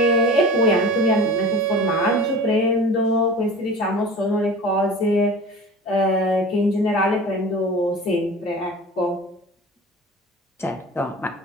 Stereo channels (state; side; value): normal; both; correlation 0.37